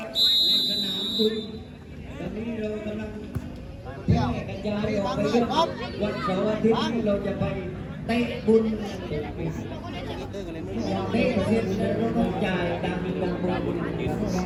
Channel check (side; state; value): both; identical; correlation 1.00